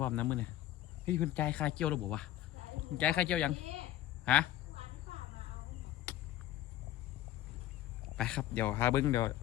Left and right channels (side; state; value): right; quieter; 13.2 dB